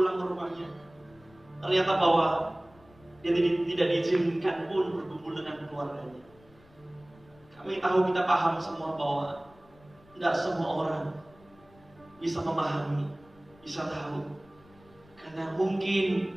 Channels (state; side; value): noise; left; rumble, 27 dB below the sound